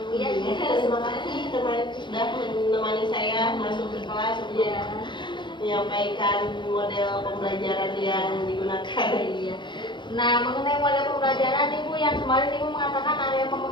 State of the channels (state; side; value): late; right; 0.23 ms